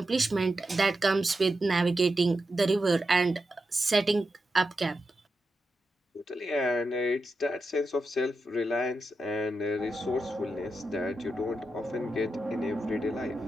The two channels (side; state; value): both; normal; correlation 0.88